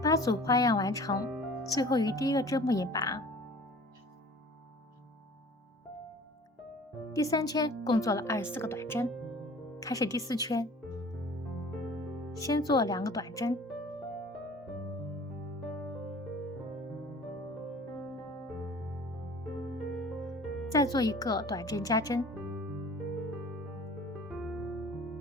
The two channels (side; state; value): both; normal; correlation 0.46